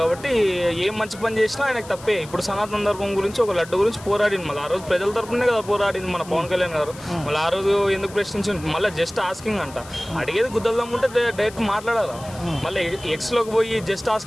ఏం మంచి పని చేసినా ఆయనకు తప్పే. ఇప్పుడు సనాతన ధర్మం గురించి ఒక లడ్డు గురించి పోరాడింది. మళ్ళీ ఆ రోజు ప్రజల తరపునే కదా పోరాడింది మన పవన్ కళ్యాణ్ గారు. మళ్ళీ ఆ రోజు ఎందుకు ప్రశ్నించింది? మళ్ళీ జస్ట్ ఆస్కింగ్ అంట. అడిగేది గుద్దల్దాం ఉంటే డైరెక్ట్ మాట్లాడాలా. మళ్ళీ ఎక్స్లోకి పోయి జస్ట్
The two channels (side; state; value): left; noise; hiss, 18 dB below the sound